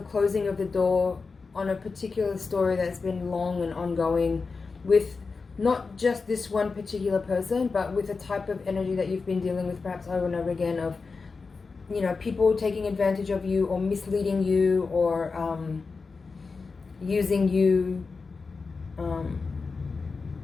closing of the door on a particular story that's been long and ongoing, with not just this one particular person, but with a type of energy that you've been dealing with perhaps over and over again of, people taking advantage of you or misleading you or using you.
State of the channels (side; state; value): right; quieter; 4.5 dB